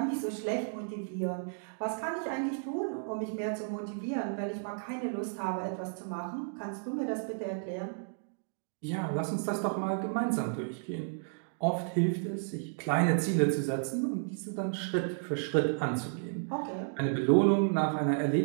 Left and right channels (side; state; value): left; silent; digital silence